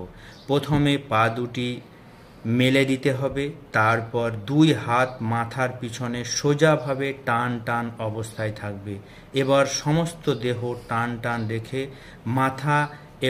প্রথমে পা দুটি মেলে দিতে হবে, তারপর 2 হাত মাথার পিছনে সোজাভাবে টান টান অবস্থায় থাকবে। এবার সমস্ত দেহ টান টান রেখে মাথা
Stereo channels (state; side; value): identical; both; correlation 1.00